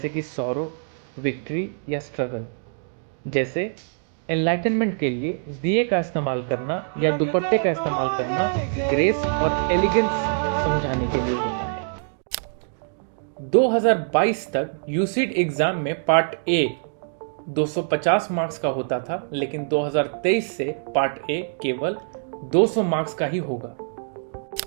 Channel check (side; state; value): left; silent; digital silence